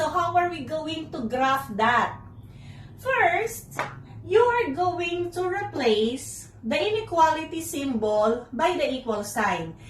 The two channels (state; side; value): identical; both; correlation 1.00